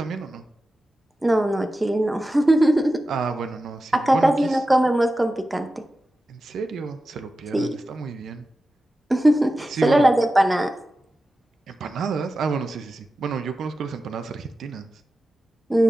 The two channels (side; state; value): both; normal; correlation 0.93